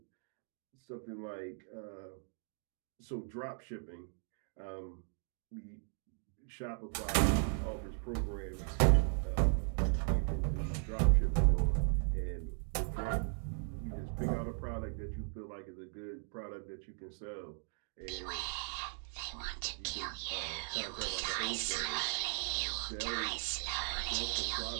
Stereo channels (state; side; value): silent; left; 53 dB below the other